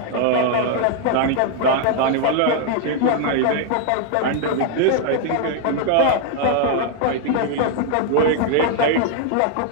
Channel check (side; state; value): both; different; correlation 0.00